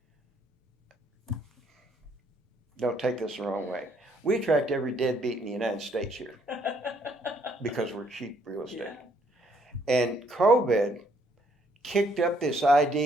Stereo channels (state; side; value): normal; both; correlation 0.68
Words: don't take this the wrong way, we attract every deadbeat in the United States here because we're cheap real estate. Yeah. And COVID kicked up this